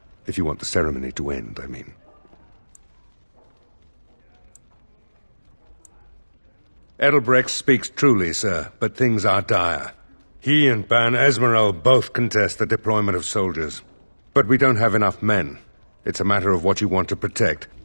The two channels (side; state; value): both; inverted; correlation -1.00